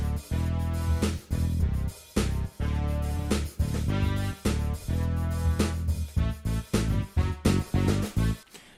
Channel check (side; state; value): both; identical; correlation 1.00